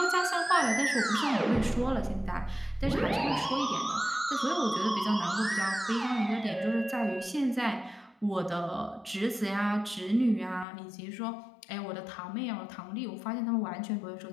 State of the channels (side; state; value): right; drops out; at 10.7 s